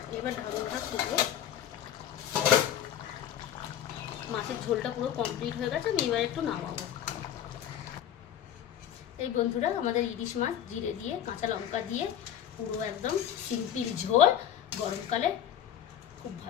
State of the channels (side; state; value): right; quieter; 10.3 dB